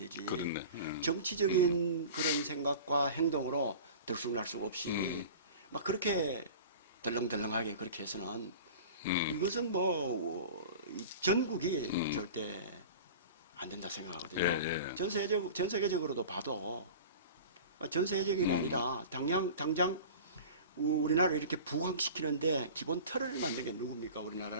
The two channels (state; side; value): inverted; both; correlation -0.38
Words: 그렇네. 정치적인 그런 생각과 행동으로 들쑥날쑥 없이 막 그렇게 덜렁덜렁하게 그렇게 해서는 이것은 뭐 이 전국이 절대 안 된다 생각하거든요. 예, 예. 전 세계적으로도 봐도 전 세계적인 게 아니라 당장 우리나라를 이렇게 부강시키는데 기본 틀을 만든 게 누굽니까?